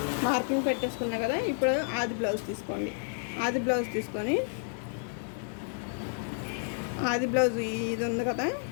మార్కింగ్ పెట్టేసుకున్నా కదా. ఇప్పుడు ఆది బ్లౌజ్ తీసుకోండి. ఆది బ్లౌజ్ తీసుకొని ఆది బ్లౌజ్ ఇది ఉంది కదా,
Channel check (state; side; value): silent; right; digital silence